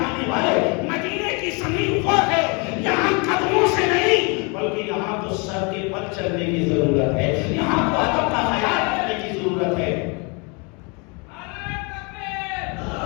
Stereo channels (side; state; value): right; quieter; 31.8 dB